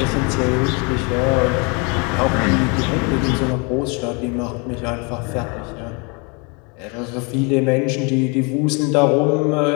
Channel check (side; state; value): right; quieter; 32.1 dB